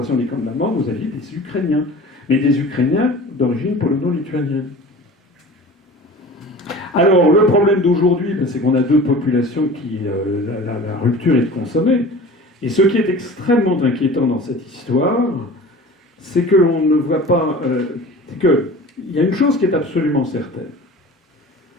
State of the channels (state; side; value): normal; both; correlation 0.39